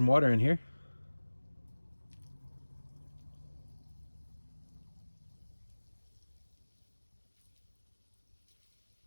water in here.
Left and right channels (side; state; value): both; inverted; correlation -1.00